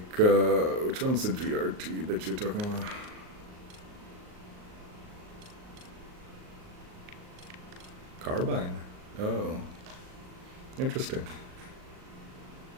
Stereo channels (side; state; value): left; late; 38 ms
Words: which one's the GRT that you're talking about? Carbine. Oh, interesting.